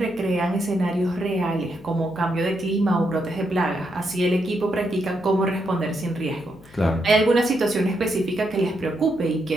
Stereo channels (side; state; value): left; noise; hum, 25 dB below the sound